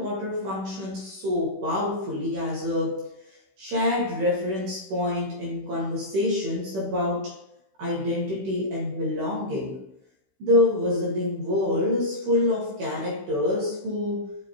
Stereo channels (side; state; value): left; late; 16 ms